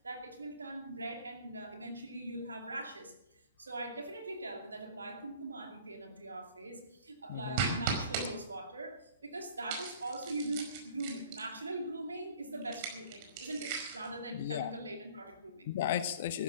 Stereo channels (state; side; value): inverted; both; correlation -0.47